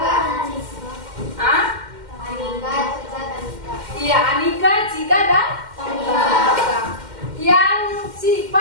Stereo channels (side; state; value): left; late; 2.1 ms